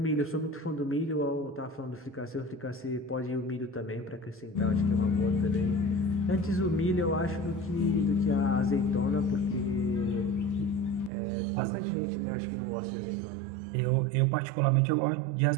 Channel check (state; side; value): drops out; left; at 11.1 s